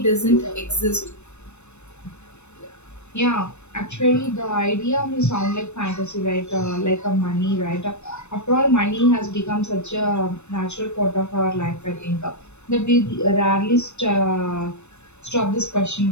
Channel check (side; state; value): right; late; 0.82 ms